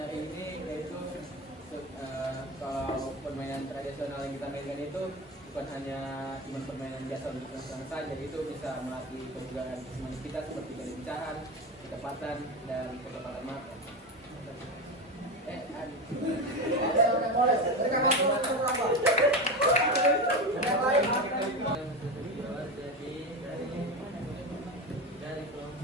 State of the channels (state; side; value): normal; both; correlation 0.20